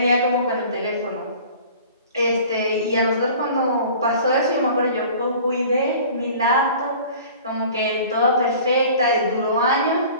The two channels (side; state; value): both; inverted; correlation -0.45